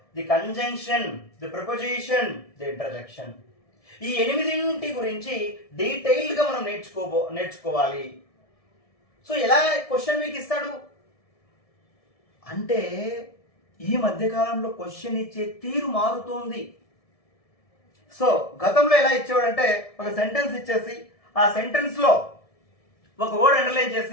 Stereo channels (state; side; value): late; right; 1.7 ms